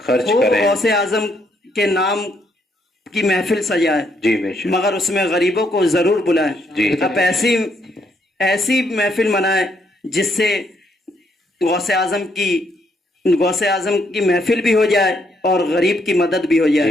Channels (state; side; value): normal; both; correlation 0.73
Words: کریں. غوث اعظم کے نام کی محفل سجائے. جی بے شک, مگر اس میں غریبوں کو ضرور بلائیں. جی, اب ایسی محفل منائیں جس سے غوث اعظم کی محفل بھی ہو جائے اور غریب کی مدد بھی ہو جائے.